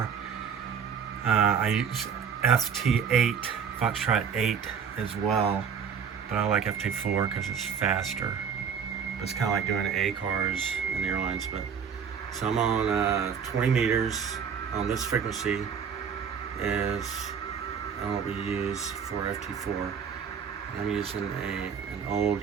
I use FT8, Foxtrot 8 as well, but I like FT4 because it's faster. But it's kind of like doing A cars in the airlines. But so I'm on 20 meters on this frequency is what we use for FT4. I'm using an old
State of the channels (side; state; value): left; quieter; 7.0 dB